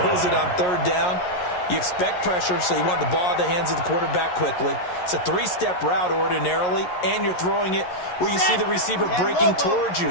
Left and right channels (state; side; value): late; right; 11 ms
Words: it on third down. You expect pressure, so you want the ball in the hands of the quarterback quickly. It's a 3-step route ordinarily, and you're throwing it where you see the receiver breaking towards you.